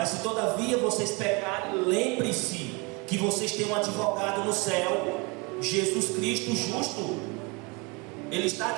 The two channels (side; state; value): left; quieter; 28.5 dB